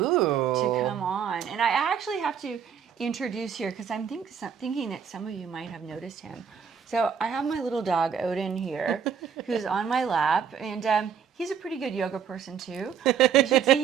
come on. And I actually have to introduce here because I'm thinking that some of you might have noticed him. So I have my little dog, Odin, here, who's on my lap. And he's a pretty good yoga person, too. You should see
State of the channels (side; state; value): left; quieter; 7.5 dB